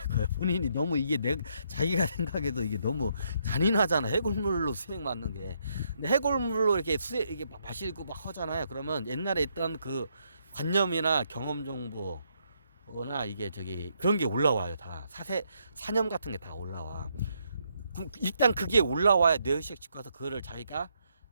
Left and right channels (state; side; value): inverted; both; correlation -0.75